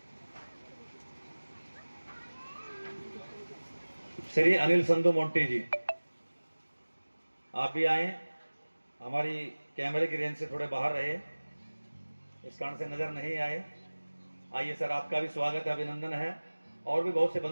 श्री अनिल संधू मोंटी जी आप भी आए, हमारी कैमरे की रेंज से थोड़े बाहर रहे, इस कारण से नजर नहीं आए। आइए सर, आपका भी स्वागत है, अभिनंदन है। और भी बहुत से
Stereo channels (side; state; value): both; inverted; correlation -1.00